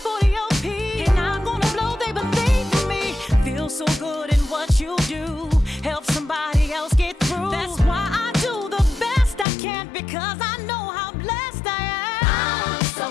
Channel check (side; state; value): right; drops out; at 9.5 s